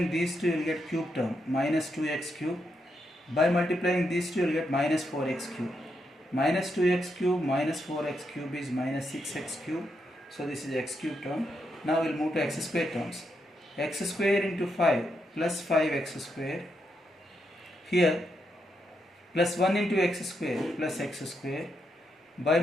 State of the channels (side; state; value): both; normal; correlation 0.82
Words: these two, you will get cube term minus 2x cube. By multiplying these two, you will get minus 4x cube. Minus 2x cube minus 4x cube is minus 6x cube. So this is x cube term. Now we will move to x square terms. X square into 5 plus 5x square. Here plus 1 into x square plus x square. By